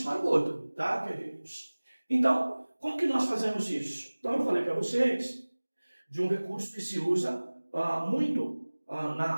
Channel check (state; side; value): inverted; both; correlation -1.00